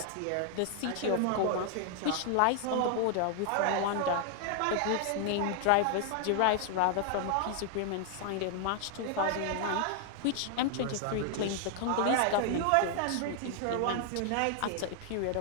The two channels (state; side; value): different; both; correlation 0.00